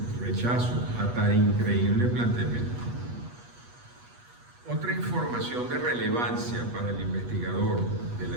rechazo a tan increíble planteamiento. Otra información información de relevancia para el investigador de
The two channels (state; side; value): late; left; 8.2 ms